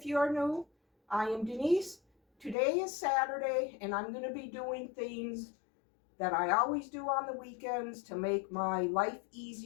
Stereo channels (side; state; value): right; drops out; at 2.6 s